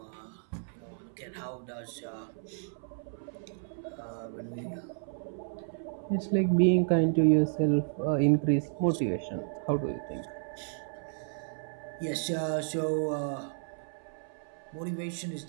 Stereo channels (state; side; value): silent; left; 56 dB below the other